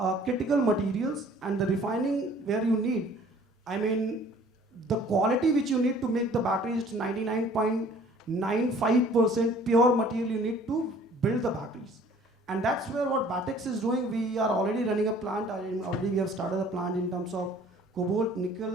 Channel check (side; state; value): both; normal; correlation 0.53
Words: critical materials, and the refining where you need, the quality which you need to make the battery is 99.95% pure material you need to build the batteries. And that's where what Batex is doing. We are already running a plant, already we have started a plant in terms of cobalt,